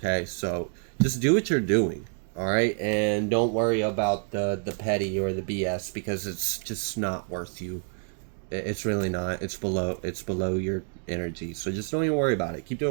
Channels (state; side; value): silent; left; 60 dB below the other